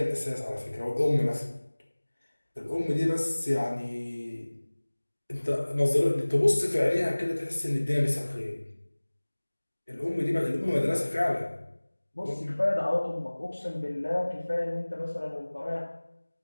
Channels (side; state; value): both; inverted; correlation -1.00